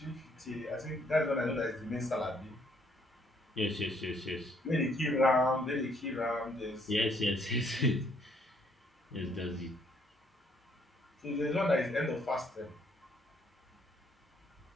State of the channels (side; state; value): both; normal; correlation 0.67